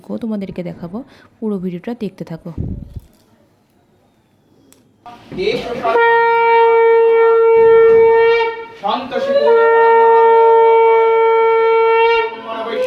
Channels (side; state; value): both; identical; correlation 1.00